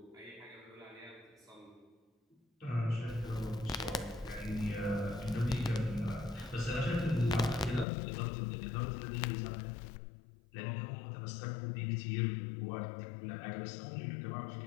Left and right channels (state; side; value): drops out; right; at 7.9 s